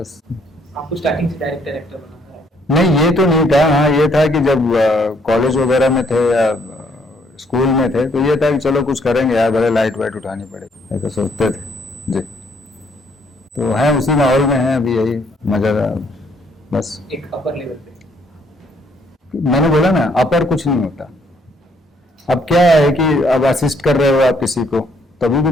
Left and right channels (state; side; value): normal; both; correlation 0.68